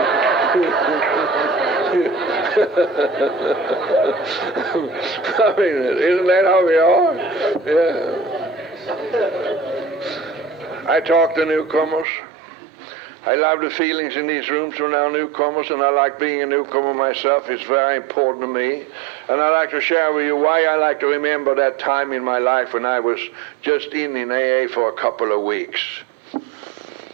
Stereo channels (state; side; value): drops out; left; at 12.1 s